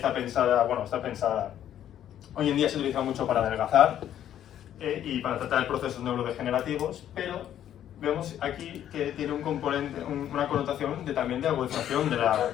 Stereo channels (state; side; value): quieter; right; 10.8 dB